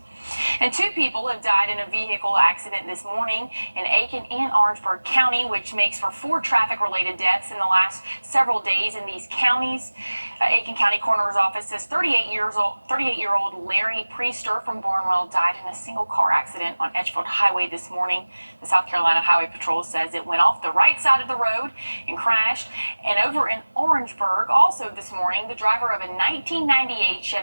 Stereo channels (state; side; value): inverted; both; correlation -1.00